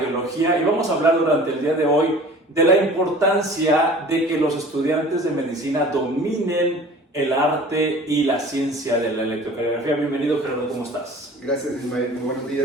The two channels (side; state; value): both; normal; correlation 0.45